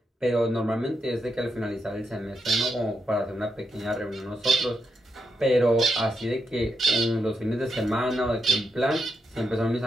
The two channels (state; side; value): normal; both; correlation 0.83